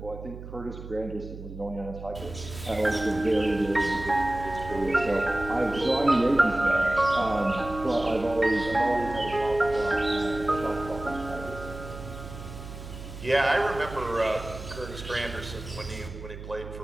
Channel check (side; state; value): right; noise; hum, 12 dB below the sound